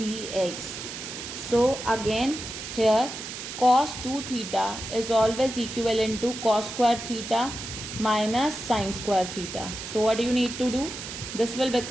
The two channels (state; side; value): noise; right; hiss, 9 dB below the sound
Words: So again here cos 2 theta is always equivalent to cos square theta minus sine square theta. So what you need to do? This will